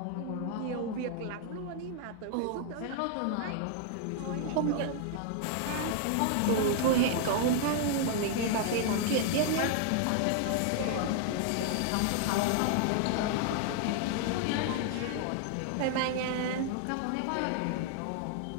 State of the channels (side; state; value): both; different; correlation 0.00